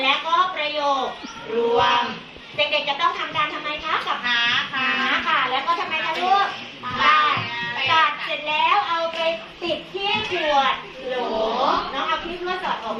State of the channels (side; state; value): both; identical; correlation 1.00